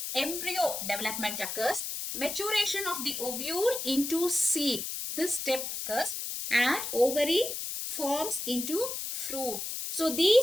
embryo development occurs, maturation of the ovule into seed. This step occurs and ovary forms into fruit. So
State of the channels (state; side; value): noise; left; hiss, 5 dB below the sound